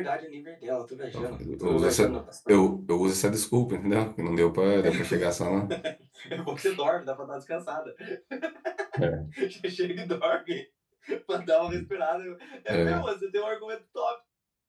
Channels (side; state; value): both; identical; correlation 1.00